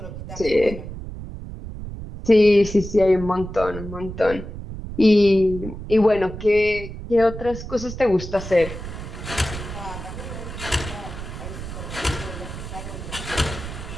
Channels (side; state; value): right; noise; rumble, 9 dB below the sound